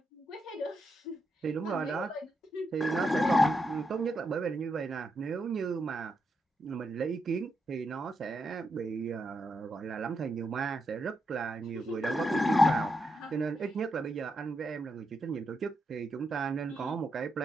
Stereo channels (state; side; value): normal; both; correlation 0.83